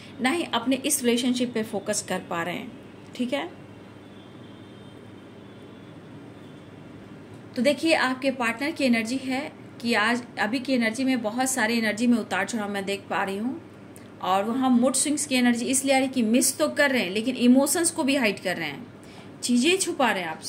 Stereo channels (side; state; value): both; identical; correlation 1.00